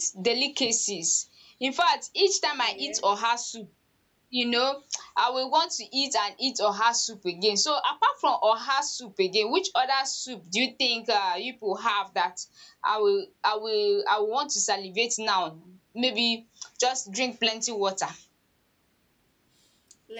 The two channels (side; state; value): both; identical; correlation 1.00